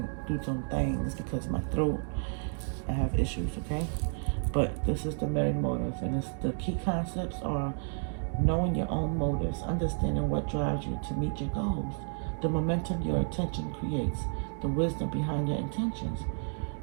some things because of my throat. I have issues, okay? But this is the Merry Motive. And the key concepts are knowing your own motives, understanding what drives you to meet your goals, the momentum your attention creates, the wisdom behind your intentions.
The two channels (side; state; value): left; silent; 57 dB below the other